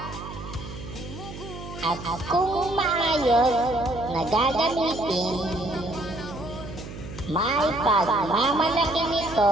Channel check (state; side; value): noise; right; hum, 11 dB below the sound